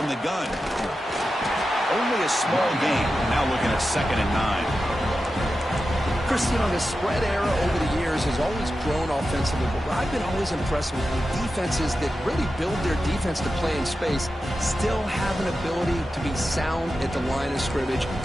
the gun. Only a small gain. Now looking at 2nd and 9. Chris, you know, the spread era over the years has always grown offensively, but what I've been always impressed with defenses that really build their defense to play in space still have an ability to be sound at the line of scrimmage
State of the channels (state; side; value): normal; both; correlation 0.91